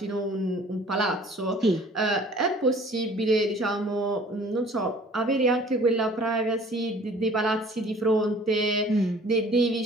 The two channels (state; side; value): normal; both; correlation 0.51